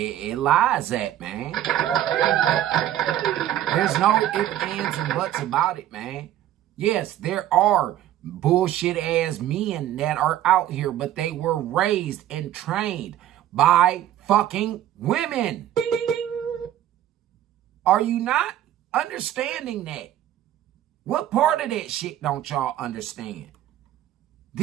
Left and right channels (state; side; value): quieter; left; 12.4 dB